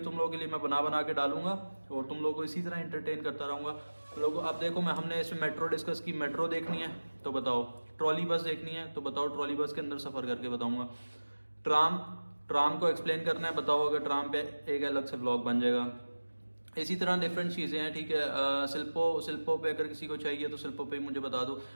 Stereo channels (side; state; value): both; inverted; correlation -1.00